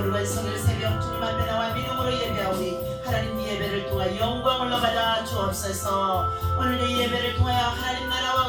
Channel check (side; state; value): both; identical; correlation 1.00